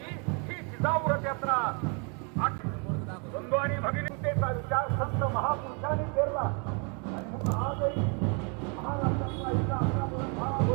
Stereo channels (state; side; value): quieter; left; 35.9 dB